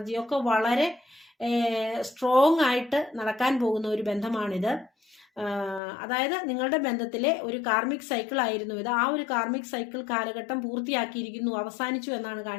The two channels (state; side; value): drops out; right; at 5.8 s